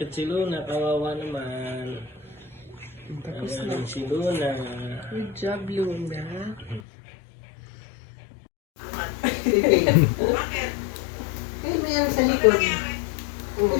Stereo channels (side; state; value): right; drops out; at 6.8 s